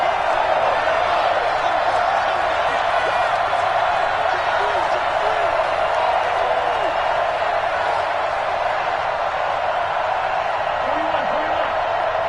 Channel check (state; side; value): identical; both; correlation 1.00